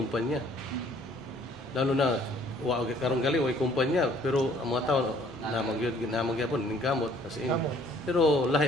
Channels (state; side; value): normal; both; correlation 0.58